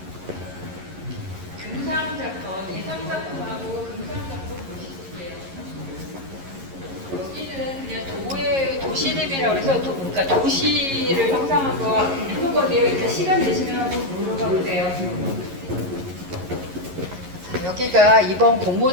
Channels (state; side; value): late; left; 11 ms